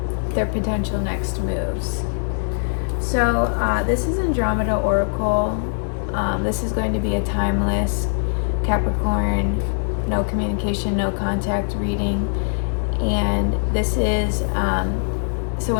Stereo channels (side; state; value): right; silent; digital silence